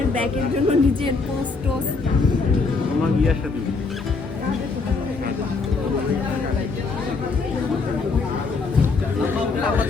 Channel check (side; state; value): right; quieter; 4.2 dB